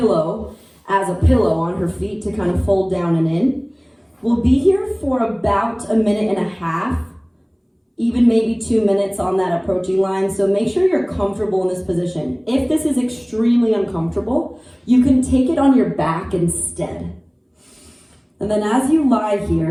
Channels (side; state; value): both; identical; correlation 1.00